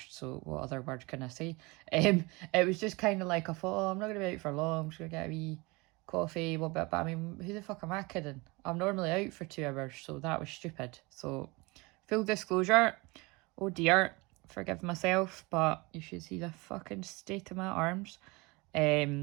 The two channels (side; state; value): left; quieter; 25.3 dB